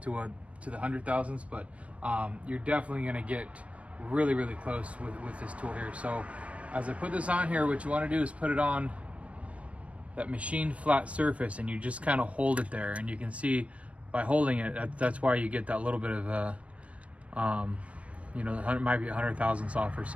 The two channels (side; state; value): left; late; 0.064 ms